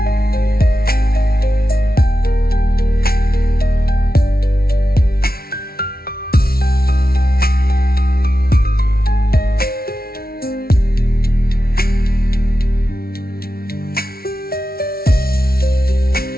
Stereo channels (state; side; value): late; right; 0.44 ms